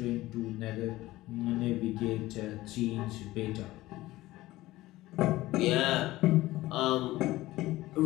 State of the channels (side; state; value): right; quieter; 17.4 dB